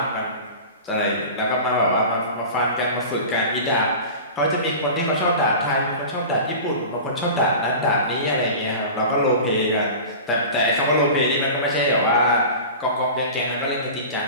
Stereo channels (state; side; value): inverted; both; correlation -0.34